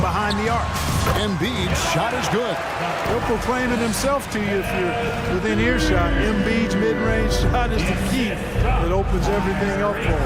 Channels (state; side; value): identical; both; correlation 1.00